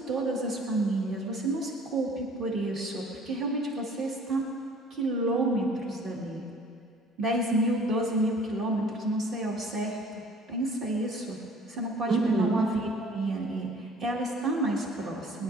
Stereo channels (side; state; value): both; normal; correlation 0.52